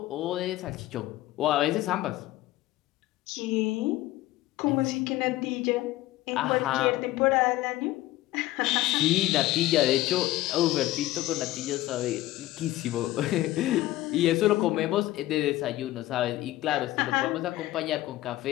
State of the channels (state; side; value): quieter; right; 16.2 dB